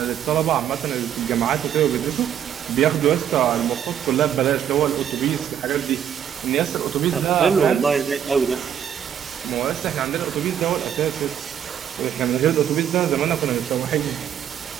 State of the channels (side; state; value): left; quieter; 9.2 dB